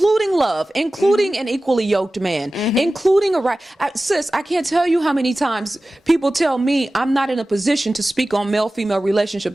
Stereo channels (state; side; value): normal; both; correlation 0.96